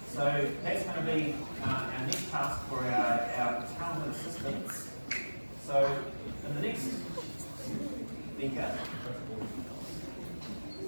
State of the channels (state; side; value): inverted; both; correlation -1.00